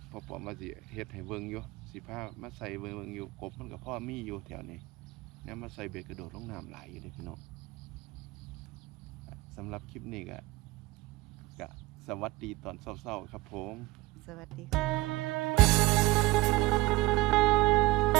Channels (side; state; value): left; quieter; 20.1 dB